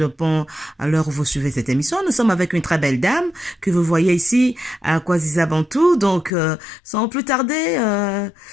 à l'heure où vous suivez cette émission. Nous sommes avec une très belle dame que vous voyez ici à Kwazisa Bantou. Donc, sans plus tarder,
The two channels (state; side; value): drops out; right; at 6.3 s